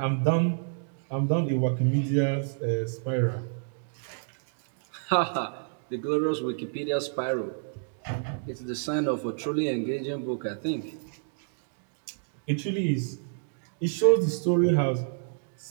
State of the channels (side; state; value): left; silent; digital silence